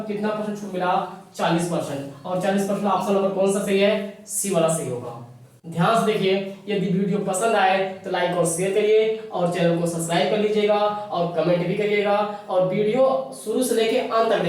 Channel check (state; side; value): identical; both; correlation 1.00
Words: कितना परसेंट छूट मिला? 40%। और 40% ऑप्शन नंबर कौन सा सही है? सी वाला सही होगा। ध्यान से देखिए, यदि वीडियो पसंद आए तो लाइक और शेयर करिए और चैनल को सब्सक्राइब कर लीजिएगा और कमेंट भी करिएगा और वीडियो शुरू से लेके अंत तक